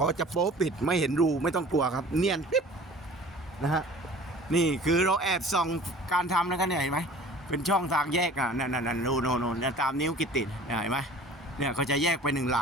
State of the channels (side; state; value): both; normal; correlation 0.46